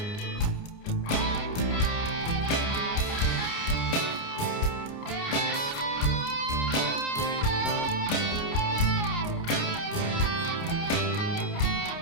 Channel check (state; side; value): late; right; 29 ms